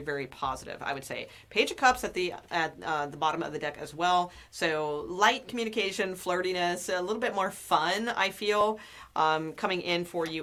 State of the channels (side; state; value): both; identical; correlation 1.00